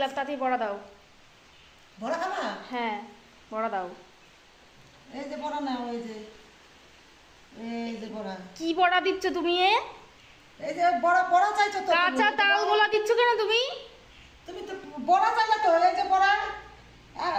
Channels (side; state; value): both; identical; correlation 1.00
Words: তাতেই বড়া দাও। বড়া খাবা? হ্যাঁ, বড়া দাও। এই যে বড়া নাও, এই যে, এই যে বড়া। কি বড়া দিচ্ছ তুমি? এই যে বড়া, বড়া চাইছো তো? কাঁচা তাল গোলা দিচ্ছ কেন তুমি? তুমি তো বড়া চাইলে তো, এই যে বড়া,